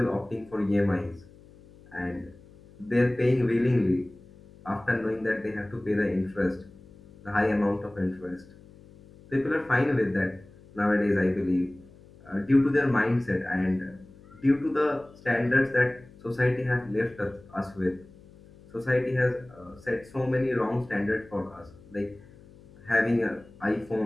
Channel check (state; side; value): noise; left; hum, 23 dB below the sound